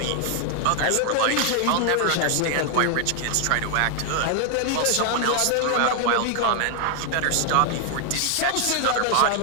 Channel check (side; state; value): both; different; correlation 0.00